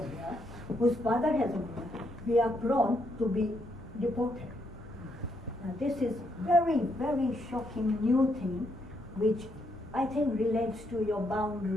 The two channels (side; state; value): both; normal; correlation 0.76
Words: here, whose father hasn't been here, we are prone to be deported. Now, this is very shocking new thing, which I think relates to your